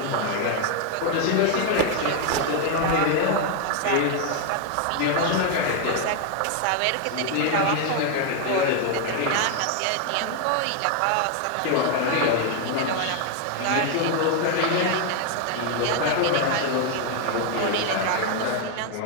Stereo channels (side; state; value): both; different; correlation 0.01